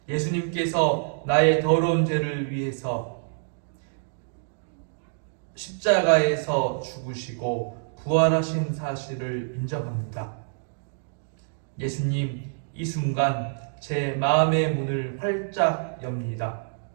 예수님께서 나의 더러운 죄를 위해서 십자가에서 죽으시고 부활하신 사실을 인정합니다. 예수님, 이 순간 제 마음의 문을 활짝 엽니다.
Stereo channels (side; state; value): left; silent; digital silence